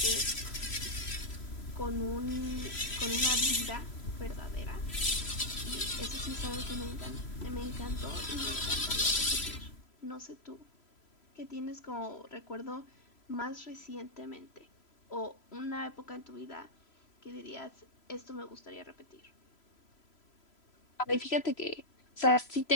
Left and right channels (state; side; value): late; right; 3.0 ms